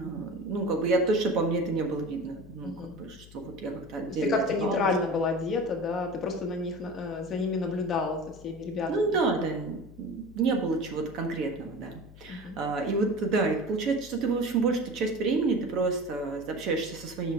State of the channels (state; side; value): noise; left; hum, 19 dB below the sound